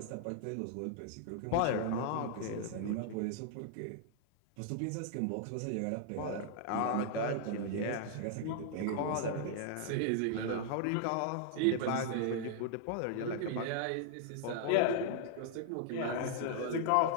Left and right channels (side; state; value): both; different; correlation -0.01